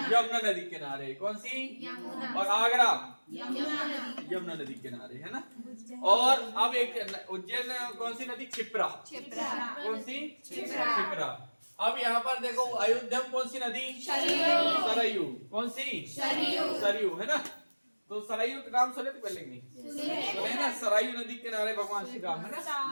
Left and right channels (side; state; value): both; inverted; correlation -1.00